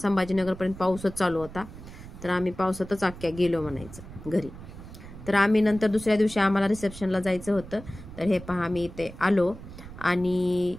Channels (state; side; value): noise; right; rumble, 15 dB below the sound